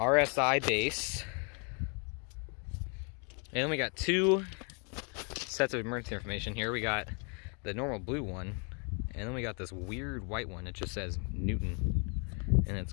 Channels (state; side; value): quieter; right; 37.2 dB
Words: base. And then we got 2 sets of emergency information here. We got the normal blue one, and then we got this weird white one. It just says Newton, and it's